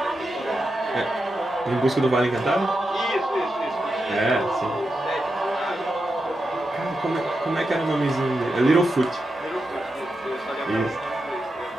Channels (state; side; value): normal; both; correlation 0.88